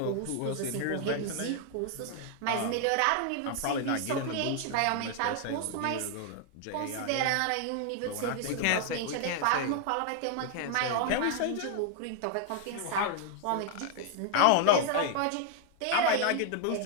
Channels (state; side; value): different; both; correlation 0.00